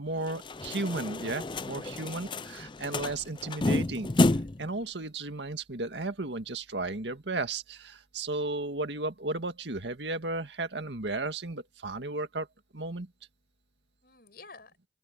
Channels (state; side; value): normal; both; correlation 0.41